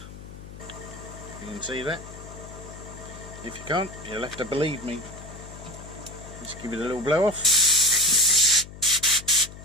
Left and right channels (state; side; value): noise; left; hum, 15 dB below the sound